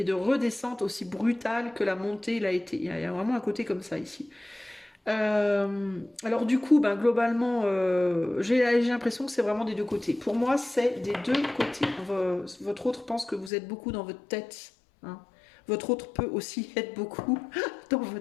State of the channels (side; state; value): right; drops out; at 13.5 s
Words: de redescente aussi brutale que la montée l'a été. Il y a vraiment un côté comme ça ici. Alors du coup, ben, globalement, j'ai l'impression que c'est vraiment des deux côtés. Pour moi, c'est des deux côtés. Votre autre pense que vous êtes beaucoup dans votre tête. Hein. Votre autre peut aussi être beaucoup dans